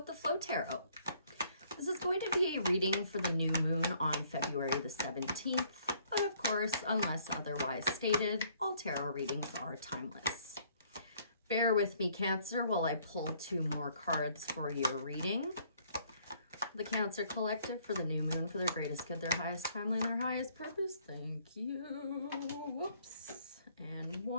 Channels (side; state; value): both; inverted; correlation -0.63